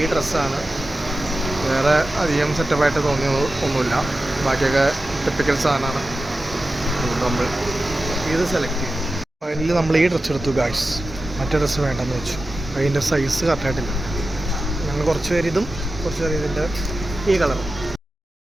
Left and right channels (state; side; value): normal; both; correlation 0.93